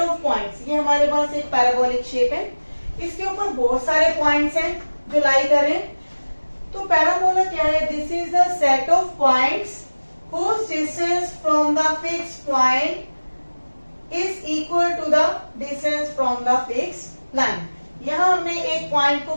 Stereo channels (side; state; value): both; inverted; correlation -1.00